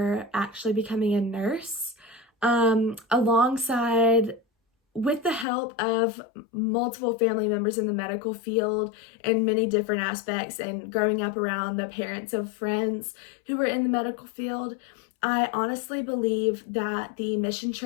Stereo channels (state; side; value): drops out; right; at 5.5 s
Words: actually becoming a nurse, alongside with the help of multiple family members in the medical field in many different aspects, and growing up around the parents of friends who were in the medical field, I honestly believe that the mission